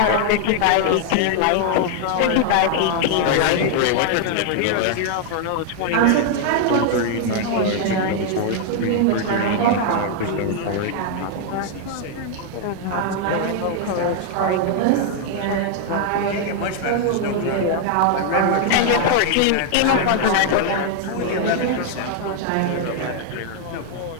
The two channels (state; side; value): different; both; correlation 0.00